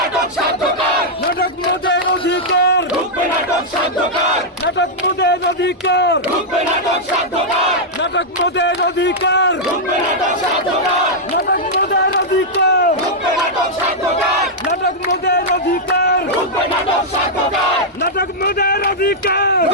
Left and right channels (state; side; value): normal; both; correlation -0.06